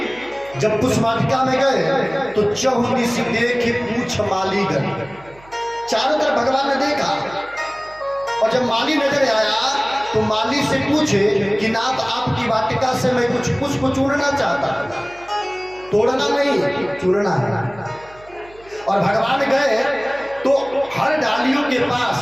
जब पुष्प वाटिका में गए तो चहुदिश देखे पूछ माली गए। चारों तरफ भगवान ने देखा और जब माली नजर आया तो माली से पूछे कि नाथ, आपकी वाटिका से मैं कुछ पुष्प चुनना चाहता हूं। तोड़ना नहीं, चुनना है। और भगवान गए तो हर डालियों के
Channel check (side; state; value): right; noise; hum, 25 dB below the sound